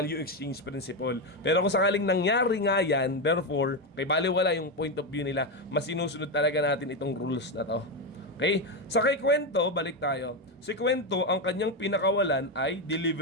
exchange principle. Pero kung sakaling nangyari nga yan, therefore, kay baliwala yung point of view nila, mas sinusunod talaga natin itong rules na to. Okay? Sa kay Kwento, balik tayo. Si Kwento, ang kanyang pinakawalan ay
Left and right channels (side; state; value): both; normal; correlation 0.10